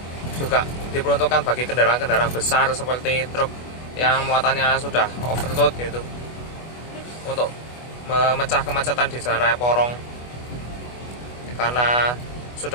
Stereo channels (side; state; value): right; late; 25 ms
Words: juga diperuntukkan bagi kendaraan-kendaraan besar seperti truk yang muatannya sudah overload gitu, untuk memecah kemacetan di jalan raya Porong, karena